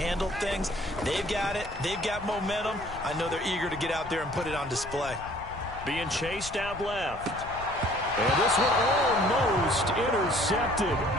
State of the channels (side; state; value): left; noise; rumble, 15 dB below the sound